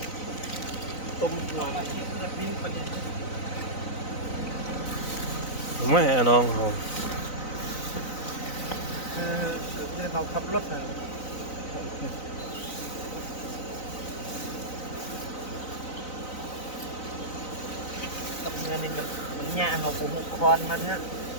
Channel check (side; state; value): right; late; 4.0 ms